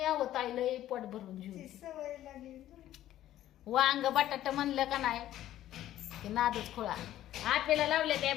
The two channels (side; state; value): right; quieter; 13.0 dB